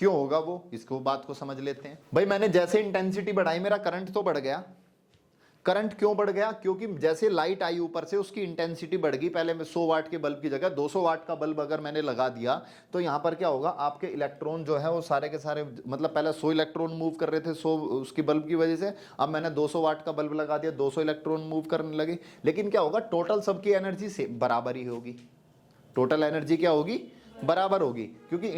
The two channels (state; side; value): identical; both; correlation 1.00